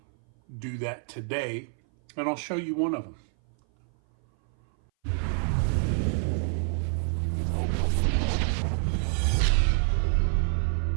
do that today, and I'll show you one of them.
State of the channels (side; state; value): left; silent; 58 dB below the other